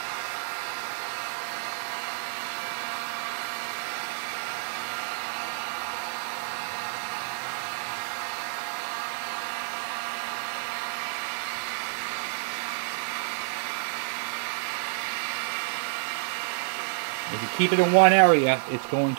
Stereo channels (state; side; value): silent; left; digital silence